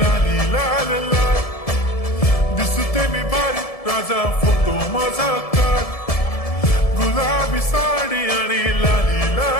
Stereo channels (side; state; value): right; late; 1.7 ms